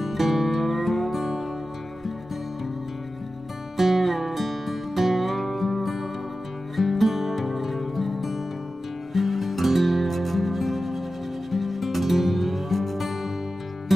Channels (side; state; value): both; normal; correlation 0.93